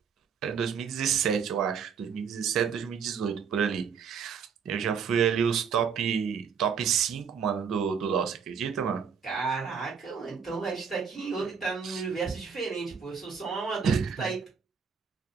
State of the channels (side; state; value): left; quieter; 6.6 dB